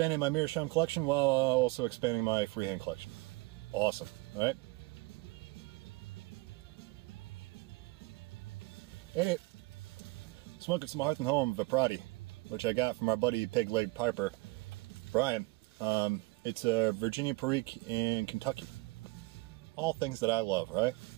my Meerschaum collection while also expanding my freehand collection. Awesome, right? Hey, smoking some Hearth and Home Viprati, which I got from our buddy Pig Leg Piper, Brian. It's a Virginia Perique in Kentucky. All things that I love, right?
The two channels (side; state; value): left; quieter; 24.4 dB